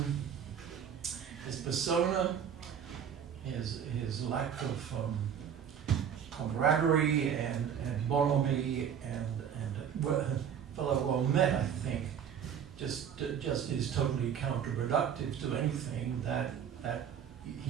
persona, his lack of camaraderie and bonhomie and fellow well met, I think, just is totally counterproductive to anything that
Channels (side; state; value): left; quieter; 8.3 dB